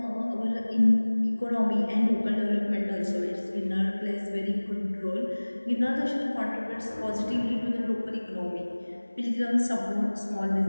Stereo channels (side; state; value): both; inverted; correlation -1.00